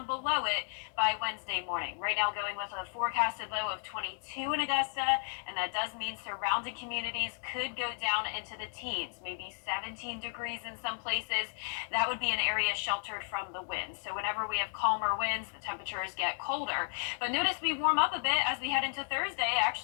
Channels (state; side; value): silent; right; digital silence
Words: below it by Wednesday morning. Right now going with a forecasted low of 22 in Augusta, and that does mean surrounding communities could go down into the teens, maybe 17 degrees in some places. That would be an area sheltered from the winds. So whenever we have calmer winds, the temperatures get colder. But notice we warm up a bit as we head into Thursday,